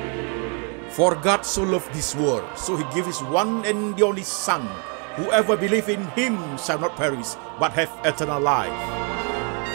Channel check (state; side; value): quieter; left; 37.9 dB